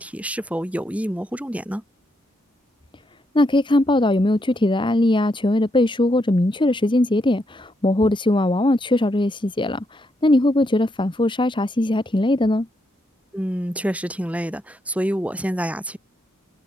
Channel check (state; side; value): normal; both; correlation 0.79